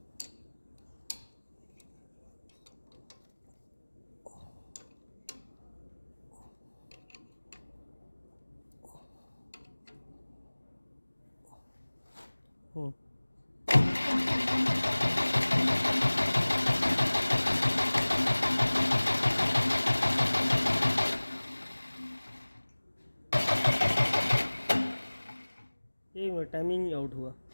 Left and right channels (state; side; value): inverted; both; correlation -1.00